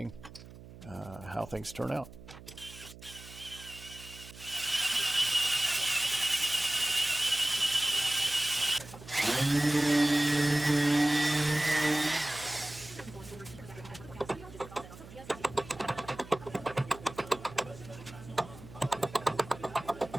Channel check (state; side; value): noise; right; hum, 17 dB below the sound